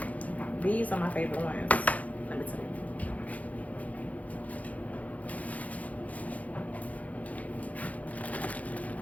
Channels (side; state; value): right; late; 0.071 ms